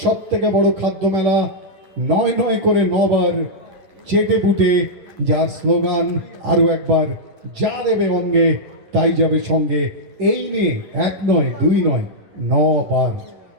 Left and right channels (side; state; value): left; late; 10 ms